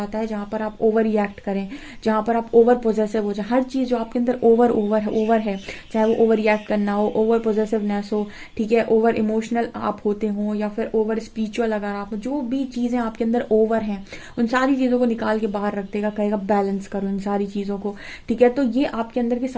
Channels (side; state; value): both; identical; correlation 1.00